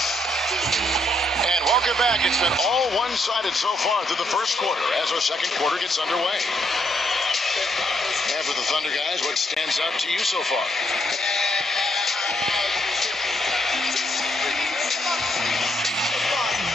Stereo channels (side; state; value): both; normal; correlation 0.74